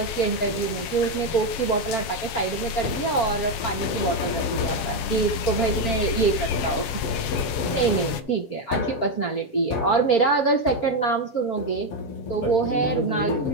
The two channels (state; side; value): late; right; 7.3 ms